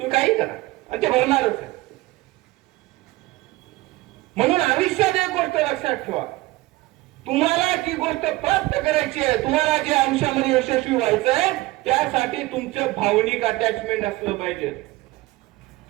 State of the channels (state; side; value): quieter; left; 19.4 dB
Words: काही करा आणि ते होणारच आहे. म्हणून आयुष्यात एक गोष्ट लक्षात ठेवा, तुम्हाला जी गोष्ट प्राप्त करायची आहे, तुम्हाला जे आयुष्यामध्ये यशस्वी व्हायचं आहे, त्यासाठी तुमचं भावनिक अटॅचमेंट असलं पाहिजे.